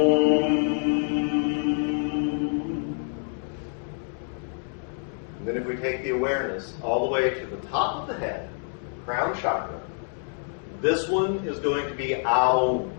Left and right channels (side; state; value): right; silent; 56 dB below the other